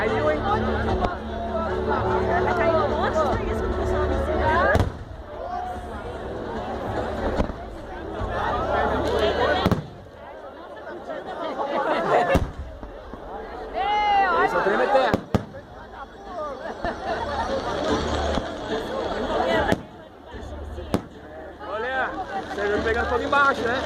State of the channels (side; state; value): both; identical; correlation 1.00